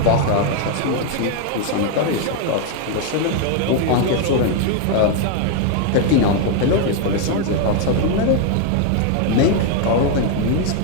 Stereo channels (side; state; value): both; different; correlation 0.01